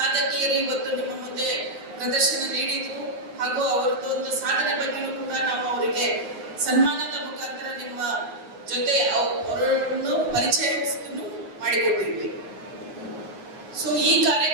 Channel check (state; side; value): late; left; 9.5 ms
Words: ಇವತ್ತು ನಿಮ್ಮ ಮುಂದೆ ಪ್ರದರ್ಶನ ನೀಡಿದ್ರು. ಹಾಗೂ ಅವರದೊಂದು ಸಾಧನೆ ಬಗ್ಗೆಯೂ ಕೂಡ ನಾವು ಅವರಿಗೆ ಸನ್ಮಾನದ ಮುಖಾಂತರ ನಿಮ್ಮ ಜೊತೆ ಅವರನ್ನು ಪರಿಚಯಿಸಲು ಮಾಡಿಕೊಟ್ಟಿದ್ವಿ. ಸೊ ಈ